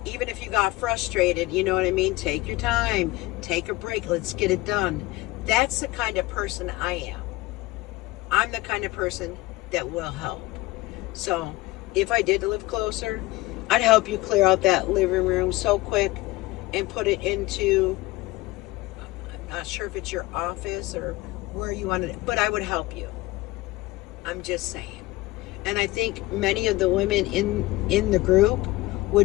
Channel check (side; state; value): right; quieter; 19.8 dB